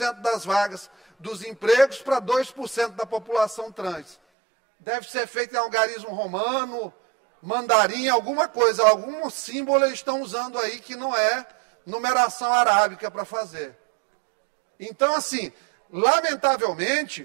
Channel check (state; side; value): drops out; left; at 4.2 s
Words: das vagas dos empregos para 2% da população trans. Deve ser feito em algarismo romano, mandarim, alguma coisa, algum símbolo eles estão usando aí que não é numeração arábica para fazer. Então, assim,